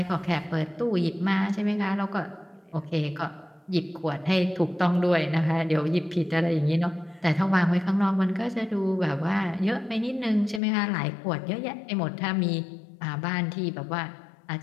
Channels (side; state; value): right; drops out; at 10.6 s